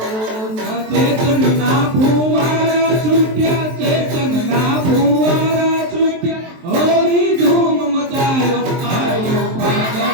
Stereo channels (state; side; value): late; left; 23 ms